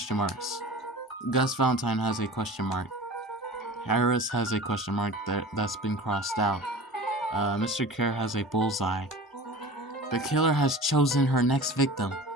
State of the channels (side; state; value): both; normal; correlation 0.37